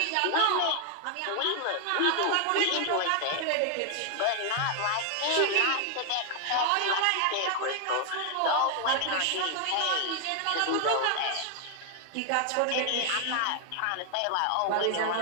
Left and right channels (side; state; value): both; different; correlation 0.00